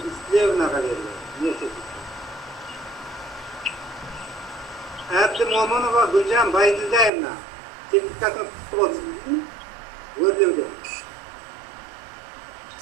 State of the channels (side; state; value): left; drops out; at 7.1 s